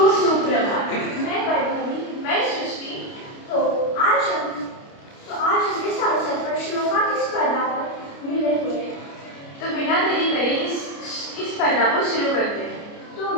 सुप्रभात। मैं वैभवी, मैं सृष्टि। तो आज हम इस अवसर पर श्लोका की स्पर्धा पर मिले हुए हैं। तो बिना देरी करे इस स्पर्धा को शुरू करते हैं। तो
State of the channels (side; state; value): right; late; 29 ms